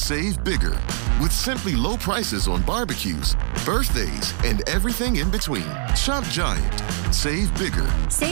bigger with simply low prices on barbecues, birthdays, and everything in between. Shop Giant. Save bigger.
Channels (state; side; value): silent; left; 61 dB below the other